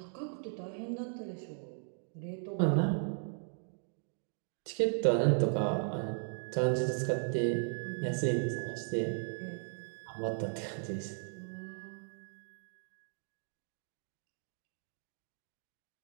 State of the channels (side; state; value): left; silent; digital silence